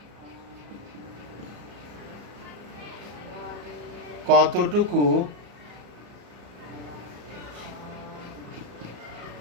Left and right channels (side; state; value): left; late; 34 ms